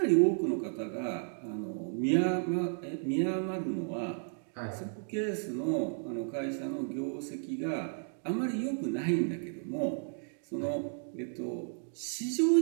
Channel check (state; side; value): silent; left; digital silence